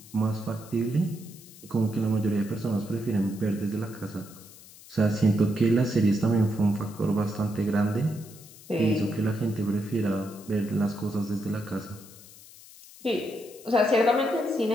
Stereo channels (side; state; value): left; noise; hiss, 20 dB below the sound